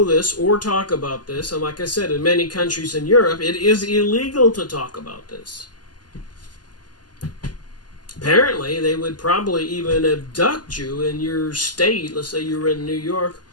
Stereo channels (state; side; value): late; right; 0.70 ms